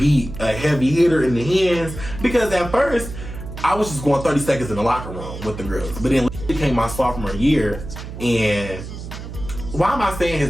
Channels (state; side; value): noise; right; hum, 10 dB below the sound